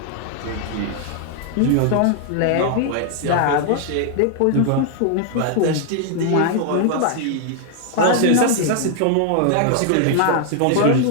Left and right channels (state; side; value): different; both; correlation 0.00